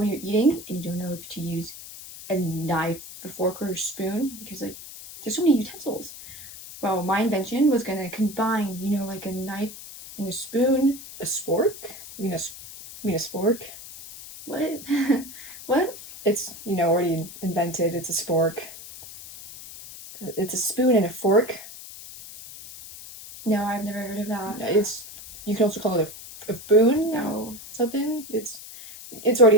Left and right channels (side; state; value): left; noise; hiss, 14 dB below the sound